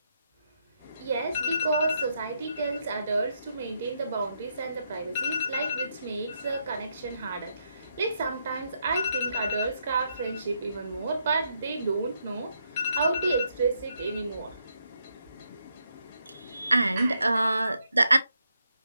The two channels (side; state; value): both; inverted; correlation -0.79